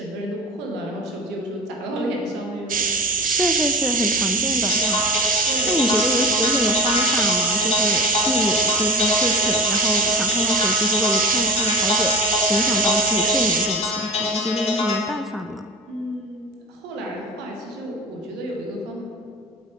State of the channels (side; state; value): both; normal; correlation 0.33